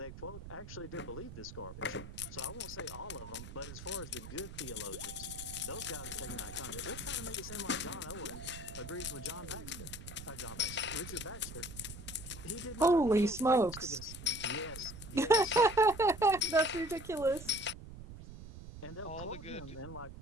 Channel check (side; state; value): right; noise; rumble, 12 dB below the sound